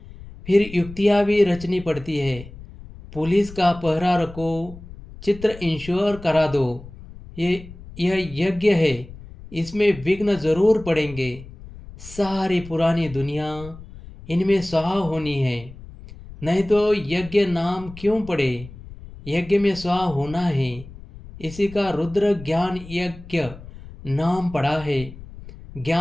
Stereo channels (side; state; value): left; noise; rumble, 16 dB below the sound